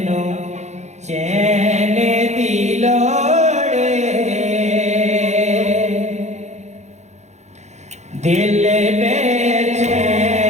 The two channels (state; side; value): late; left; 0.33 ms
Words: नो चैन दिलोड़े दिल